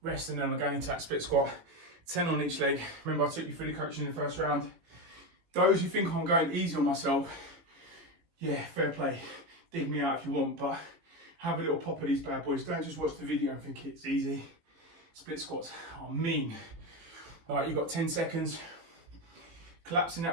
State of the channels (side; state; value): left; late; 18 ms